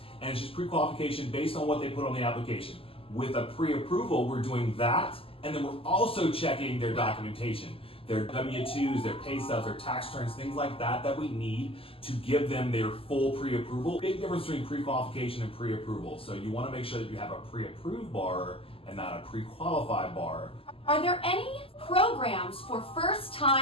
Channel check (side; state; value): right; late; 0.27 ms